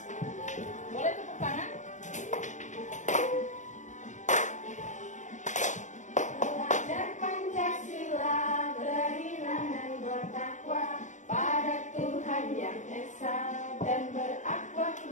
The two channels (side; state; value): right; late; 0.35 ms